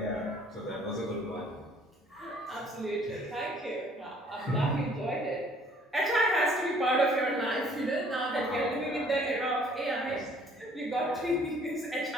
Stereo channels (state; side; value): normal; both; correlation 0.58